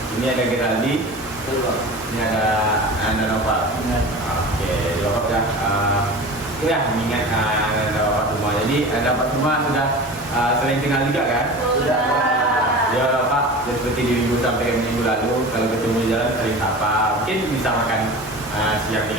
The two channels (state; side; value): normal; both; correlation 0.34